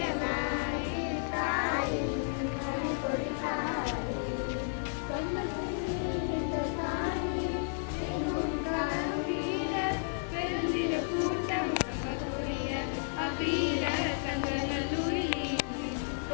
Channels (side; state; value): right; silent; digital silence